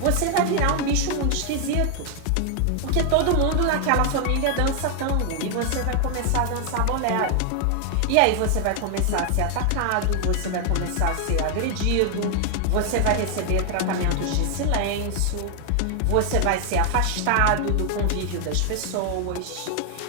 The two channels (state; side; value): different; both; correlation 0.00